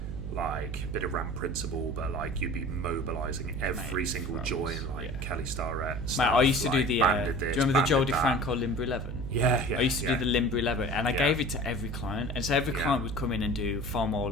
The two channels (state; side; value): noise; right; hum, 6 dB below the sound